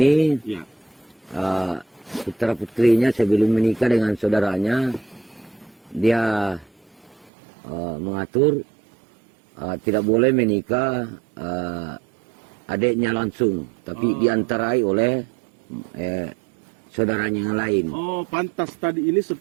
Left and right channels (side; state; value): left; drops out; at 7.3 s